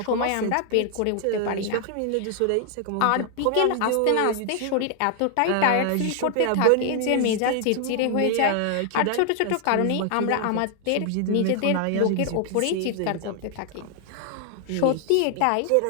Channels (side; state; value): both; different; correlation 0.00